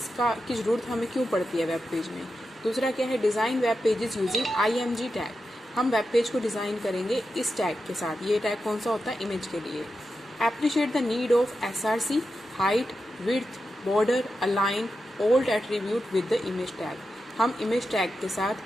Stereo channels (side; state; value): both; normal; correlation 0.89